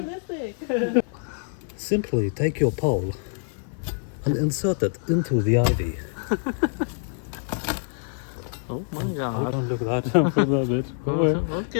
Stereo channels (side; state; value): right; silent; 55 dB below the other